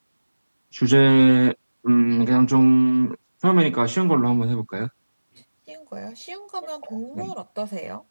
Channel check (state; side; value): inverted; both; correlation -1.00